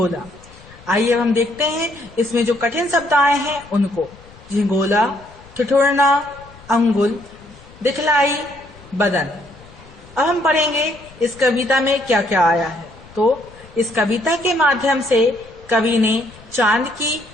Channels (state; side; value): noise; left; rumble, 23 dB below the sound